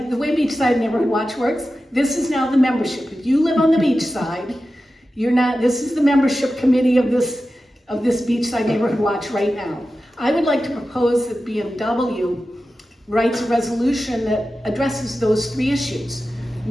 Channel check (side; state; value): both; normal; correlation 0.93